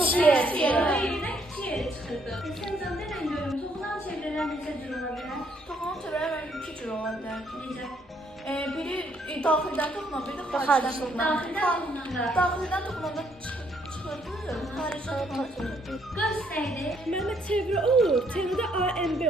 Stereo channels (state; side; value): normal; both; correlation 0.69